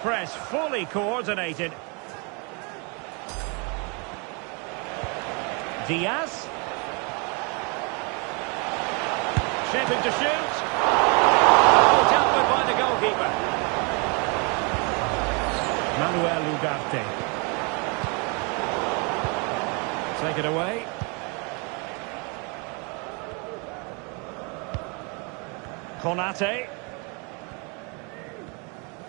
fully coordinated. Diaz. Shaping to shoot. Oh, dealt with by the goalkeeper. Manuel Ugarte. Take it away. Konate.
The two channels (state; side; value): quieter; left; 33.2 dB